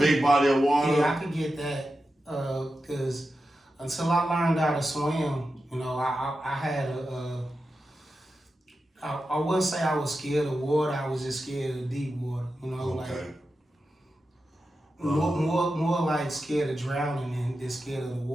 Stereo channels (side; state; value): both; normal; correlation 0.91